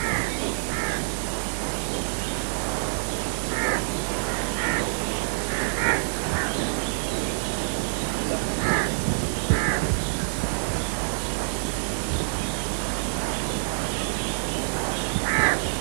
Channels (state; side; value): silent; left; digital silence